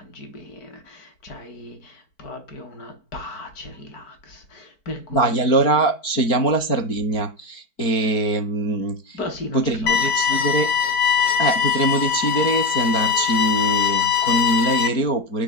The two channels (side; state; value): right; late; 4.5 ms